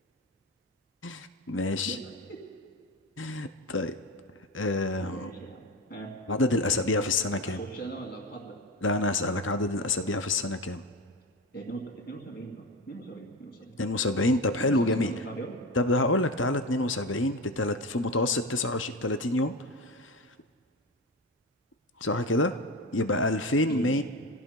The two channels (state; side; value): normal; both; correlation 0.23